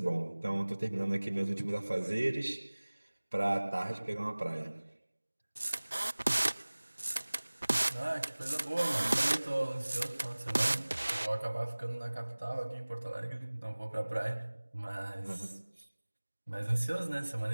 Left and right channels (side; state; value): both; inverted; correlation -1.00